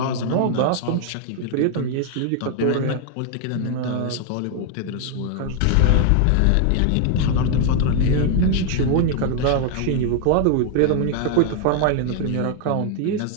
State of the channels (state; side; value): different; both; correlation 0.00